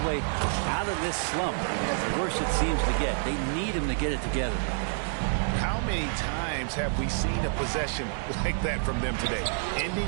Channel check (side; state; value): left; silent; 59 dB below the other